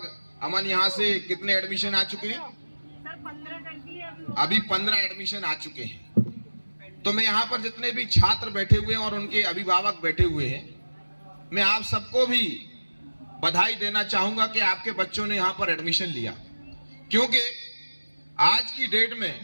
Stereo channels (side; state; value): both; inverted; correlation -1.00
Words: अमन यहाँ से कितने एडमिशन आ चुके हैं? अभी 15 एडमिशन आ चुके हैं। तो मैं यहाँ पर जितने भी छात्र बैठे हुए हैं और उनके अभिभावक बैठे हुए हैं, मैं आप सबको भी बधाई देना चाहूंगा कि आपके बच्चों ने यहाँ पर एडमिशन लिया। क्योंकि आज की डेट